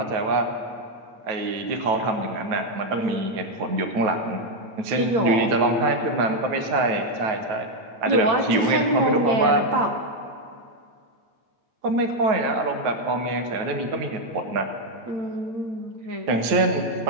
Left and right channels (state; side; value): late; left; 9.2 ms